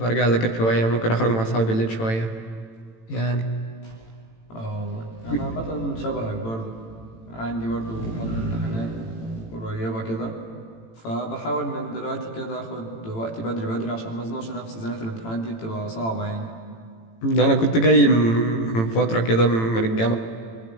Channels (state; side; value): late; right; 18 ms